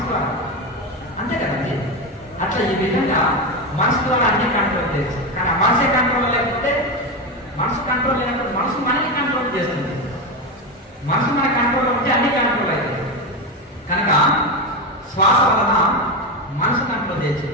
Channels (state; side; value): normal; both; correlation 0.15